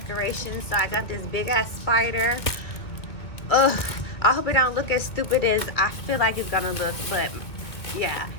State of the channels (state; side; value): late; right; 2.1 ms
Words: So I got this big ass spider. Ugh, I hope it don't look as stupid as I feel like it's gonna look, but yeah.